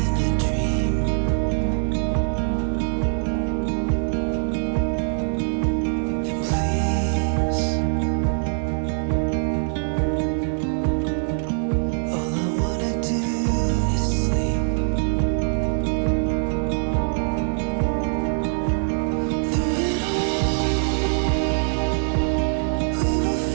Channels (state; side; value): silent; left; digital silence